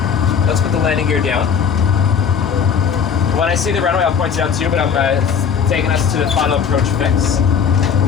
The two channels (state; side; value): quieter; right; 6.9 dB